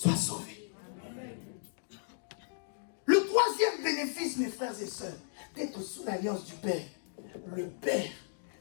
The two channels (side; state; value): right; silent; digital silence